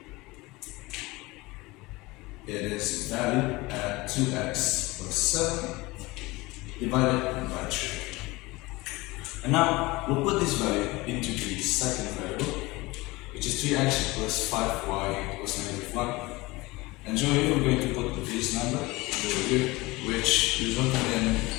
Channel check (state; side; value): quieter; right; 21.9 dB